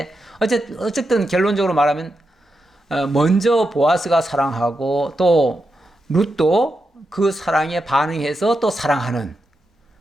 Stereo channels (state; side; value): normal; both; correlation 0.87